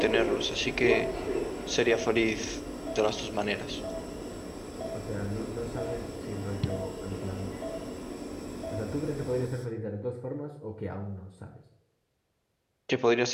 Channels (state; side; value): identical; both; correlation 1.00